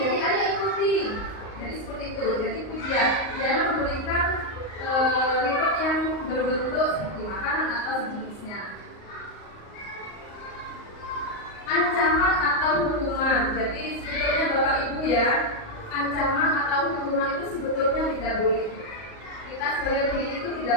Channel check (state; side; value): late; right; 38 ms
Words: ayo ikuti. Jadi seperti itu, jadi pujian. Jangan memberikan reward yang berbentuk seperti makanan atau sejenisnya. Ancaman atau hukuman. Jadi sebetulnya Bapak Ibu ya, ancaman atau kalau hukuman itu sebetulnya tidak boleh. Kita sebagai pendidik itu tidak